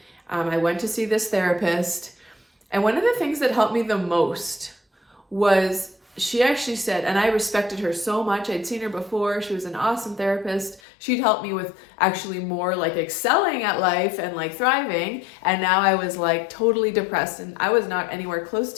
I went to see this therapist. And one of the things that helped me the most was she actually said, and I respected her so much. I'd seen her before. She was an awesome therapist. She'd helped me with actually more like excelling at life and like thriving. And now I was like totally depressed and I was not anywhere close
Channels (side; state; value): right; drops out; at 10.8 s